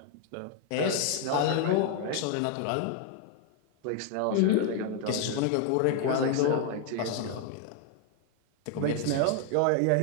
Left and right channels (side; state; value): both; different; correlation 0.00